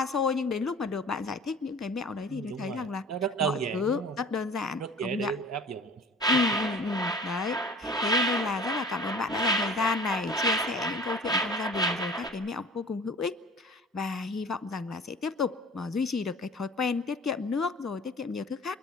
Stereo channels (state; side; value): normal; both; correlation 0.43